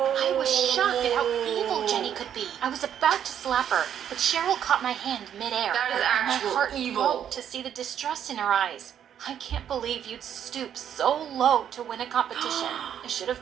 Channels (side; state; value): left; quieter; 9.4 dB